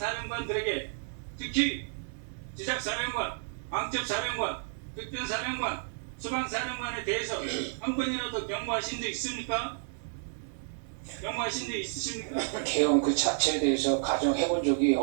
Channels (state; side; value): silent; left; 57 dB below the other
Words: 특히 지작사령관, 방첩사령관, 특전사령관, 수방사령관에 대해서 한 번이라도 경고하신 적 있습니까? 경고하신 적 있으십니까? 개헌 그 자체에 대해서 가정해본 적이